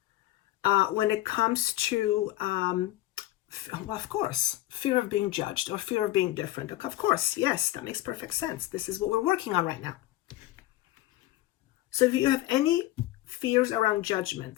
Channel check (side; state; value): right; quieter; 15.8 dB